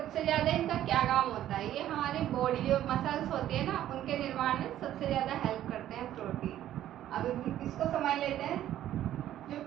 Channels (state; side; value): quieter; left; 12.4 dB